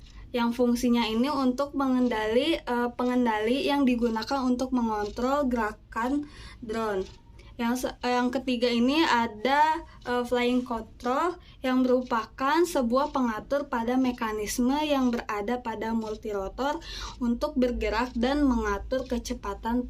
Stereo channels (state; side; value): identical; both; correlation 1.00